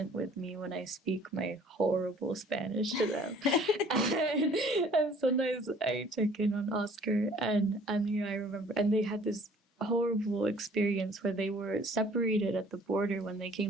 with me when I speak my horrible Spanish to them. and sometimes I check in on Oscar and I remember, and they had this horrible experience where they were separated at the border when they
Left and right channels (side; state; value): both; normal; correlation 0.54